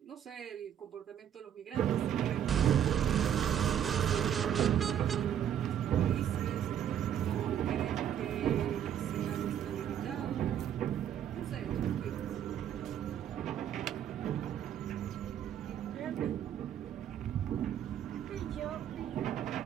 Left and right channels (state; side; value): quieter; left; 9.7 dB